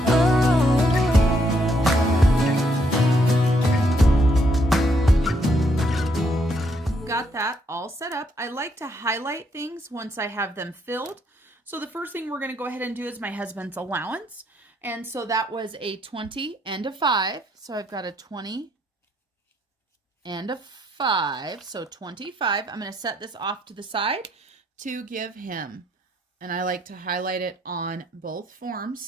Got that all set up. I like to highlight things once I have them filled. So the first thing we're going to go ahead and do is my husband's allowance. And so that was a 20 and a 5. So I've got a 20 and a 5. So 25. I'm going to set this off to the side to give him. And I like to highlight it on both forms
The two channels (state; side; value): normal; both; correlation 0.73